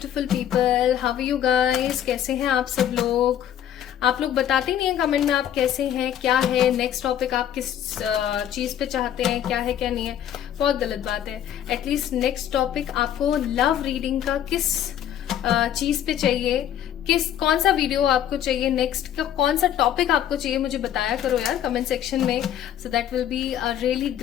people, how are you guys? कैसे हैं आप सब लोग? आप लोग बताते नहीं हैं कमेंट में आप कैसे हैं, क्या है नेक्स्ट टॉपिक, आप किस चीज पे चाहते हैं, क्या है क्या नहीं है। बहुत गलत बात है। एटलीस्ट नेक्स्ट टॉपिक आपको लव रीडिंग का किस चीज पे चाहिए, कौन सा वीडियो आपको चाहिए, नेक्स्ट का कौन सा टॉपिक आपको चाहिए, मुझे बताया करो यार कमेंट सेक्शन में। So that will be a really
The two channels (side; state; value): right; quieter; 10.5 dB